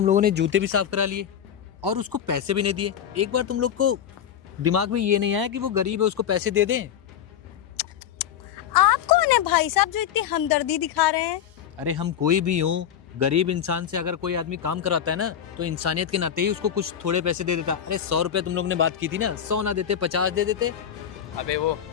लोगों ने जूते भी साफ करा लिए और उसको पैसे भी नहीं दिए। एक बार तुम लोग को दिमाग में ये नहीं आया कि वो गरीब है, उसको पैसे दे दें? आप कौन है भाई साहब जो इतनी हमदर्दी दिखा रहे हैं? अरे हम कोई भी हो, गरीब इंसान से अगर कोई आदमी काम कराता है ना, तो इंसानियत के नाते ही उसको कुछ थोड़े पैसे दे देता। अरे 100 रुपए तुम लोग ने बात की थी ना, 100 ना देते 50 दे देते। अबे वो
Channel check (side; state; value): right; quieter; 9.2 dB